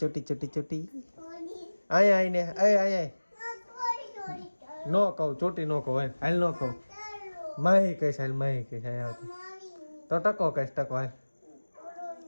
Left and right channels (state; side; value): inverted; both; correlation -1.00